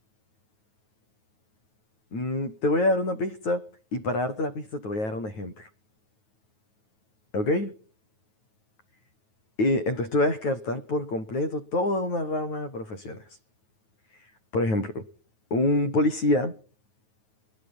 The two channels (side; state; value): right; late; 9.3 ms